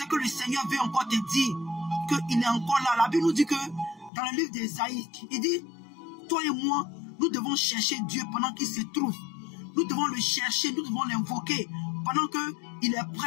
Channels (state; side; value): drops out; right; at 4.1 s